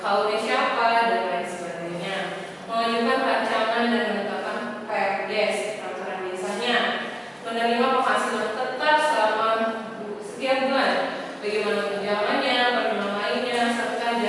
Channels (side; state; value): both; identical; correlation 1.00